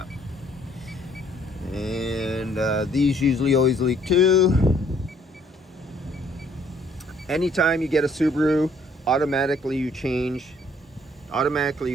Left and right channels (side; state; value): both; normal; correlation 0.63